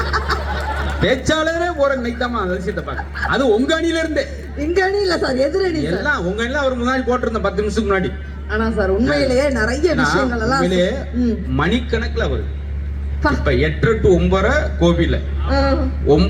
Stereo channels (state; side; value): identical; both; correlation 1.00